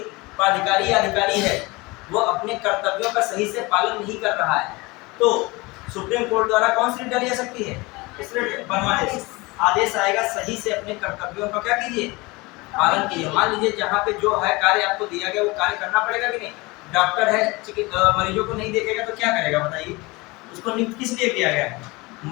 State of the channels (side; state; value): right; quieter; 23.9 dB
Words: प्राधिकारी या अधिकारी है, वो अपने कर्तव्यों का सही से पालन नहीं कर रहा है, तो सुप्रीम कोर्ट द्वारा कौन सी डाली जा सकती है? इसलिए परमादेश आदेश आएगा, सही से अपने कर्तव्यों का क्या कीजिए? पालन कीजिए। मान लीजिए जहाँ पे जो है कार्य आपको दिया गया वो कार्य करना पड़ेगा कि नहीं? डॉक्टर है, मरीजों को नहीं देखेगा तो क्या करेगा बताइए? उसको नियुक्त किस लिए किया गया है?